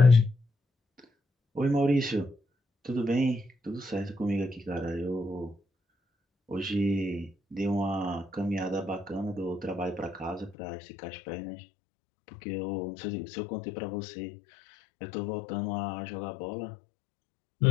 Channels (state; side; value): drops out; right; at 10.6 s